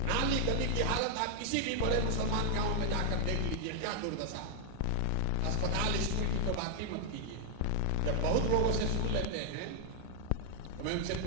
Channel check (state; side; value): different; both; correlation 0.00